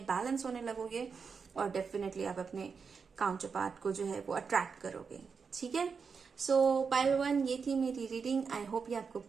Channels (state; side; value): quieter; left; 5.6 dB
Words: बैलेंस होने लगोगे, और डेफिनेटली आप अपने काउंटर पार्ट को जो है वो अट्रैक्ट करोगे, ठीक है। सो पाइल 1, ये थी मेरी रीडिंग। आई होप ये आपको